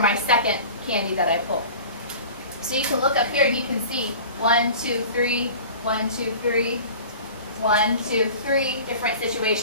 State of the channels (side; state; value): both; inverted; correlation -0.40